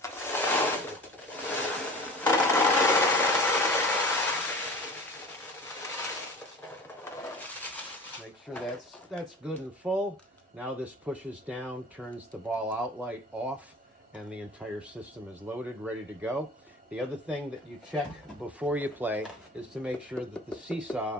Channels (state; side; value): normal; both; correlation 0.39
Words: Make sure that's good and full. Now this pushes down, turns the ball outlight off, and the entire system is loaded, ready to go. The other thing that you check before you play is to make sure that the